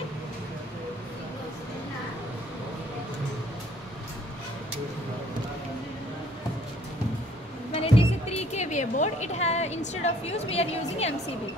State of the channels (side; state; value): both; normal; correlation 0.60